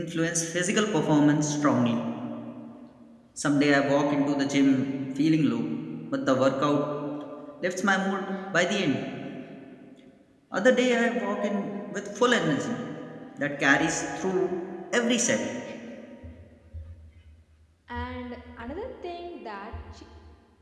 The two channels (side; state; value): both; identical; correlation 1.00